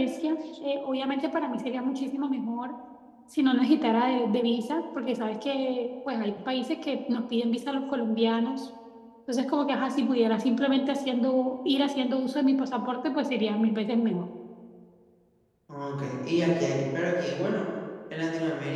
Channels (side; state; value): both; identical; correlation 1.00